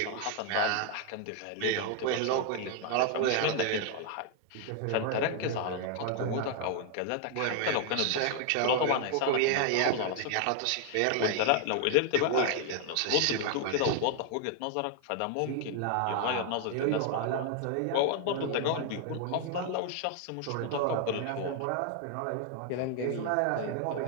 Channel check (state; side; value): different; both; correlation 0.00